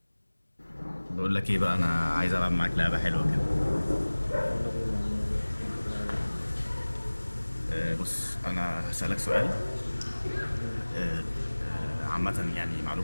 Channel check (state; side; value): inverted; both; correlation -1.00